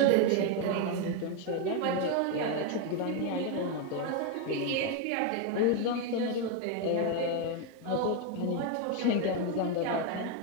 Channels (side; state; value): both; different; correlation 0.02